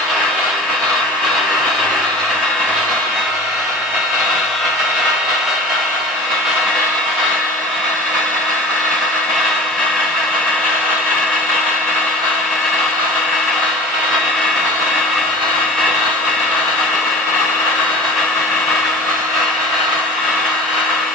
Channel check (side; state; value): both; normal; correlation 0.39